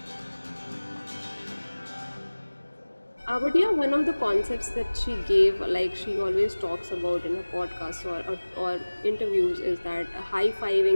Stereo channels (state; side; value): inverted; both; correlation -1.00